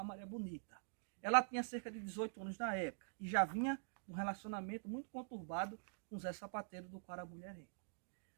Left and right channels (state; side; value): silent; left; digital silence